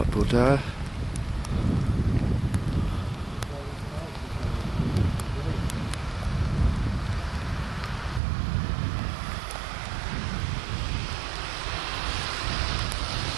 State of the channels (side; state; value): left; drops out; at 8.2 s